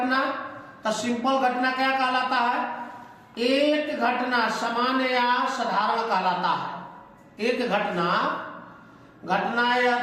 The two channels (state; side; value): identical; both; correlation 1.00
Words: तो सिंपल घटना क्या कहलाता है, एक घटना सामान्य या साधारण कहलाता है। एक घटना, घटना या